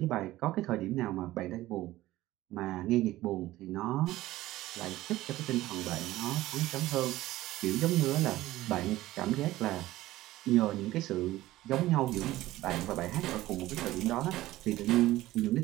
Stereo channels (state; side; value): quieter; left; 16.4 dB